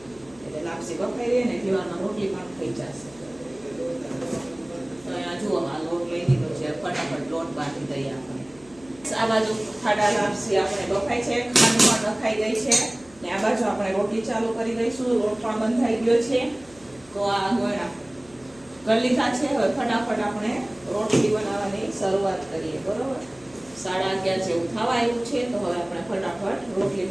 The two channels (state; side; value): noise; left; hum, 26 dB below the sound